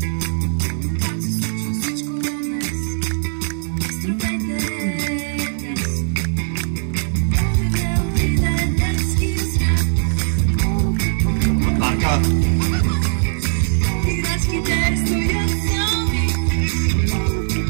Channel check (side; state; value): left; silent; digital silence